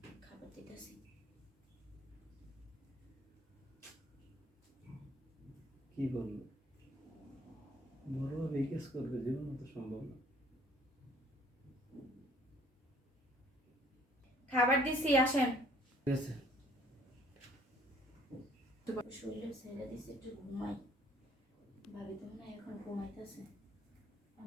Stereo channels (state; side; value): normal; both; correlation 0.59